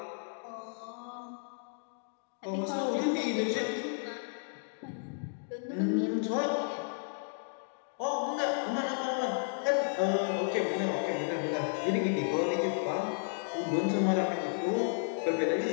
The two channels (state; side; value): silent; right; digital silence